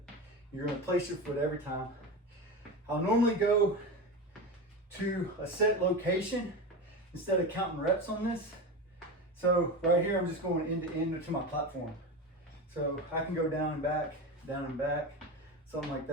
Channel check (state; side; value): normal; both; correlation 0.23